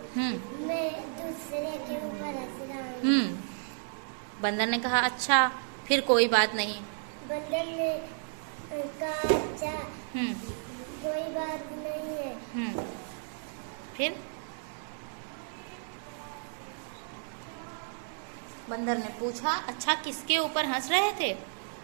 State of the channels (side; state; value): left; silent; digital silence